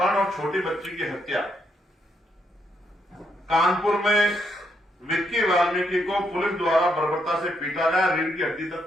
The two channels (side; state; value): both; normal; correlation 0.77